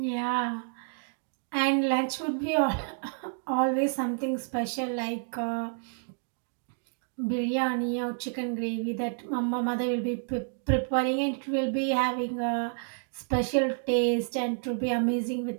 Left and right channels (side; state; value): left; silent; digital silence